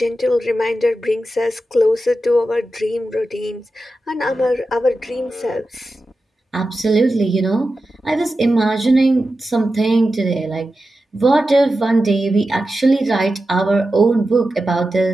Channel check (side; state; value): both; normal; correlation 0.92